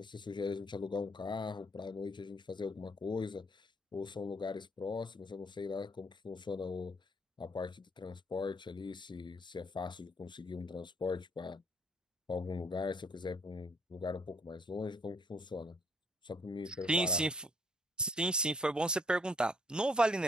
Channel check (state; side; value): normal; both; correlation 0.66